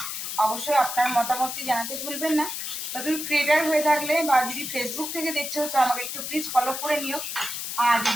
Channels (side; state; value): left; noise; hiss, 5 dB below the sound